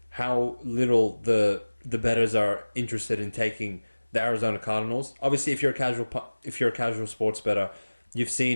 how little the bettors are interested in taking the Arizona Cardinals. Obviously, if you're a casual sports bettor, you've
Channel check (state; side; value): inverted; both; correlation -1.00